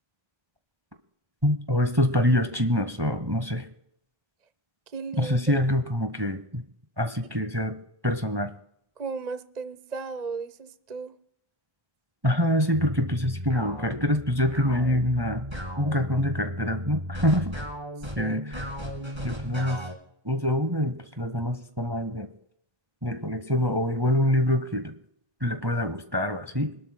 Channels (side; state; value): left; late; 1.1 ms